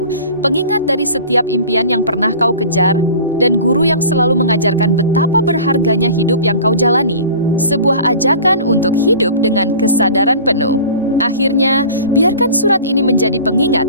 pengingat dari setiap impian yang pernah kau kejar, dan guru yang selalu mengajarkan betapa berharganya hidup yang kau jalani. Sebuah ajakan untuk hidup dengan kesadaran penuh. Akhirnya, biarkan surat ini menjadi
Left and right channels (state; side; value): inverted; both; correlation -0.41